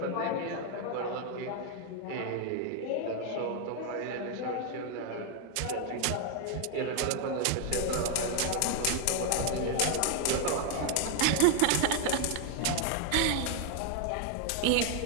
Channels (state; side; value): different; both; correlation 0.00